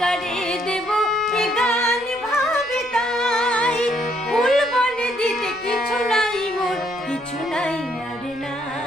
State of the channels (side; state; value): left; noise; rumble, 27 dB below the sound